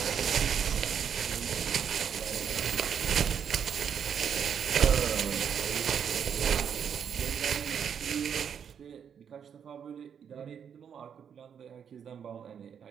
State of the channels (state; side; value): quieter; left; 7.8 dB